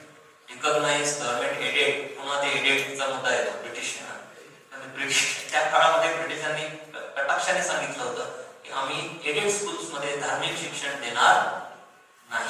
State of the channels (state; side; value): identical; both; correlation 1.00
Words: रिकॉग्नाइज, गव्हर्नमेंट एडेड. पुन्हा ते एडेडचा मुद्दा येतो ब्रिटिशांना. त्या काळामध्ये ब्रिटिशांनी कटाक्षाने सांगितलं होतं की आम्ही एडेड स्कूल्स मध्ये धार्मिक शिक्षण देणार